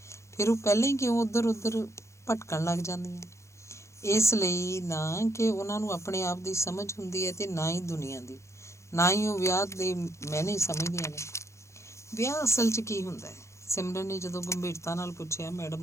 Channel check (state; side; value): late; right; 0.14 ms